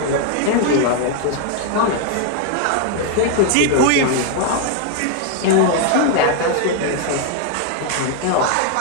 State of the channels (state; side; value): different; both; correlation 0.00